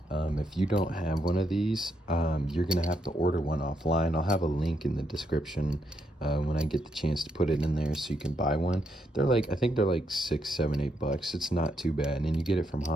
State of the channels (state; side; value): normal; both; correlation 0.78